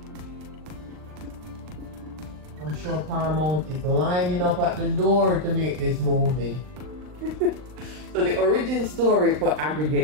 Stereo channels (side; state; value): left; late; 39 ms